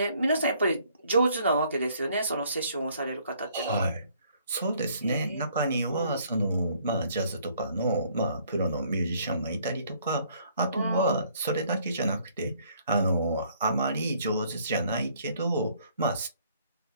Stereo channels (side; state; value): both; inverted; correlation -0.63